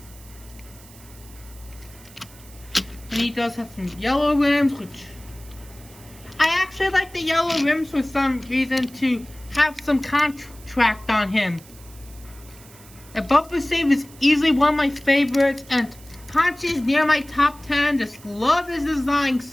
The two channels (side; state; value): right; noise; hiss, 22 dB below the sound